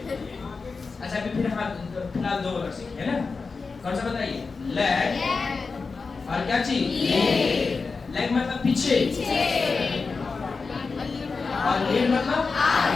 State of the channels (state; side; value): quieter; right; 4.5 dB